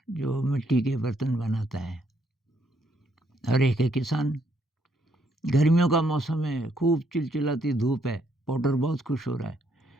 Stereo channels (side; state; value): both; normal; correlation 0.72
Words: जो मिट्टी के बर्तन बनाता है और एक है किसान। गर्मियों का मौसम है, खूब चिलचिलाती धूप है, पॉटर बहुत खुश हो रहा